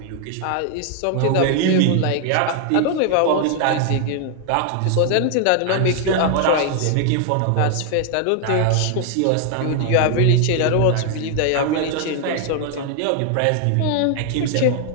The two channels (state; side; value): different; both; correlation 0.00